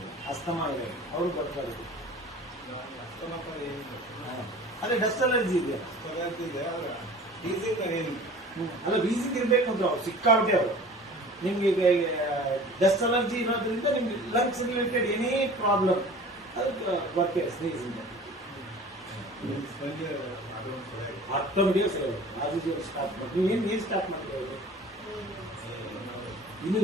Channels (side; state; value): both; normal; correlation 0.43